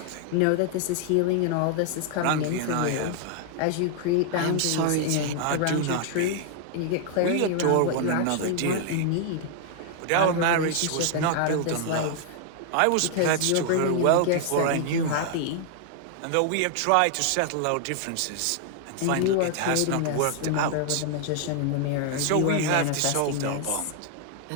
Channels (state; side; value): different; both; correlation 0.00